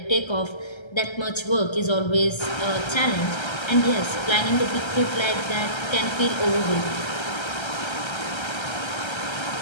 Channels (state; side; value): late; right; 1.3 ms